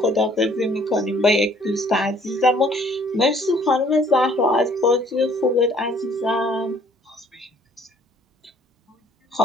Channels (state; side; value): normal; both; correlation 0.59